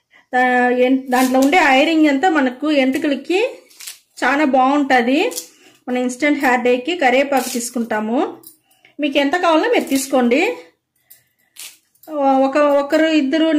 దాంట్లో ఉండే ఐరన్ అంతా మనకు ఎంటుకలకి చాలా బాగుంటుంది. మన ఇన్స్టెంట్ హెయిర్ డైకి కరేపాకు తీసుకుంటాము. మీకు ఎంత కావాలో మీరు తీసుకోండి. ఒకరు ఇద్దరు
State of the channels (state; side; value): identical; both; correlation 1.00